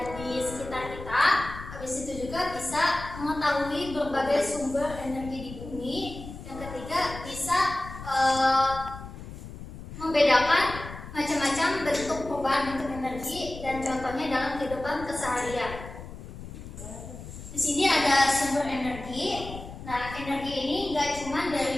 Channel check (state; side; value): noise; left; rumble, 12 dB below the sound